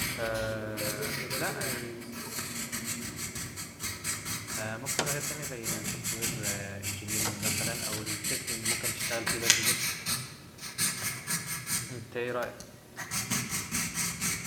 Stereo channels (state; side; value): identical; both; correlation 1.00